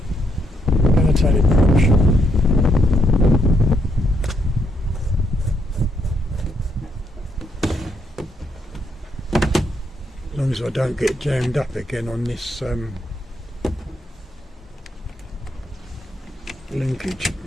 going to take it approach. As long as I don't get jammed up again on this linkage.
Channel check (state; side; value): normal; both; correlation 0.77